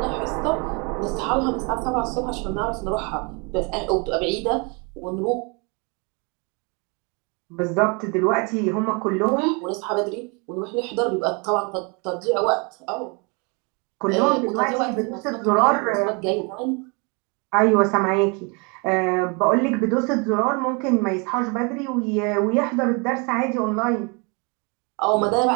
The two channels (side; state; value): left; quieter; 31.9 dB